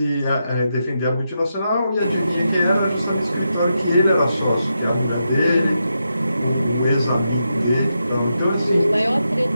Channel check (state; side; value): inverted; both; correlation -0.85